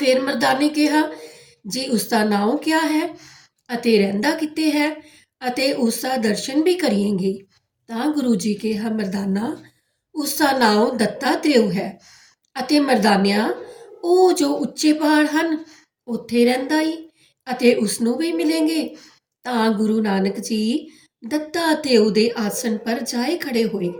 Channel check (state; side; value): identical; both; correlation 1.00